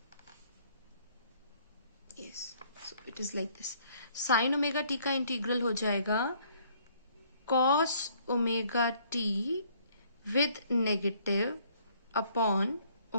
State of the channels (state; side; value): inverted; both; correlation -0.62